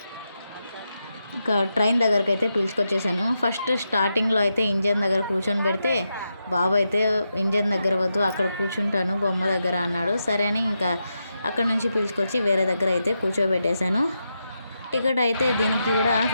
ఇంకా ట్రైన్ దగ్గరికి అయితే పిలుచుకొచ్చేసాను. ఫస్ట్ స్టార్టింగ్లో అయితే ఇంజన్ దగ్గర కూర్చొని పెడితే బాబు అయితే ఇంజన్ దగ్గర వద్దు, అక్కడ కూర్చుంటాను బొమ్మ దగ్గర అన్నాడు. సరే అని ఇంకా అక్కడ నుంచి పిలుచుకొచ్చి వేరే దగ్గర అయితే కూర్చోబెట్టేశాను. టికెట్ అయితే దీనికి కూడా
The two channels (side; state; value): both; inverted; correlation -0.86